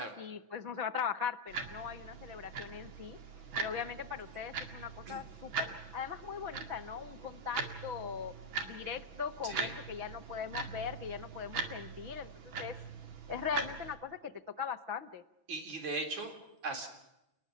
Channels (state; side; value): late; left; 6.0 ms